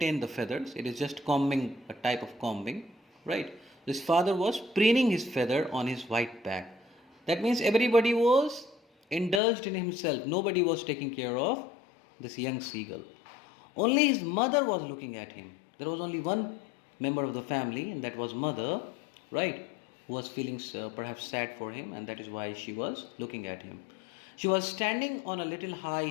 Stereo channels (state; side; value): drops out; right; at 9.4 s